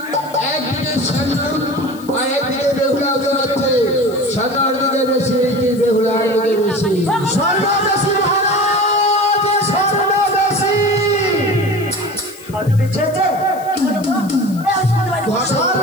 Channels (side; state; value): left; noise; hiss, 21 dB below the sound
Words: একদিকে স্বর্ণ আর একদিকে বেহুলা ওজন হচ্ছে। স্বর্ণর দিকে বেশি কি বেহুলার দিকে বেশি? স্বর্ণ বেশি মহারাজ, স্বর্ণ বেশি। স্বর্ণ বেশি হয়েছে? কি হলো গো? এই শুনতে পাচ্ছি। স্বর্ণ